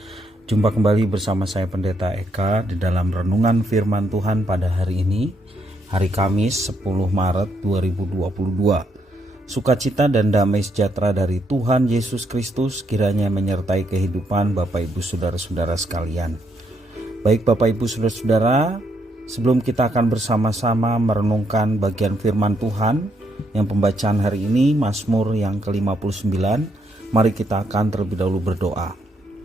Jumpa kembali bersama saya Pendeta Eka di dalam renungan firman Tuhan pada hari ini, hari Kamis 10 Maret 2022. Sukacita dan damai sejahtera dari Tuhan Yesus Kristus kiranya menyertai kehidupan Bapak Ibu Saudara-saudara sekalian. Baik Bapak Ibu Saudara-saudara, sebelum kita akan bersama-sama merenungkan bagian firman Tuhan yang pembacaan hari ini Mazmur yang ke-59, mari kita akan terlebih dahulu berdoa.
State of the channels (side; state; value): both; normal; correlation 0.76